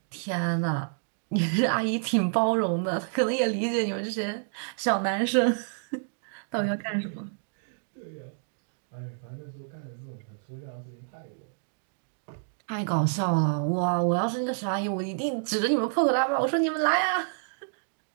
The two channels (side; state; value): left; silent; digital silence